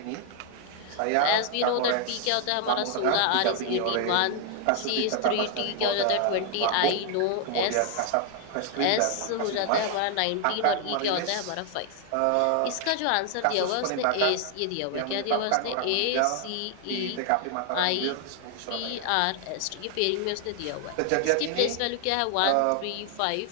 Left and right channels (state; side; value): different; both; correlation 0.00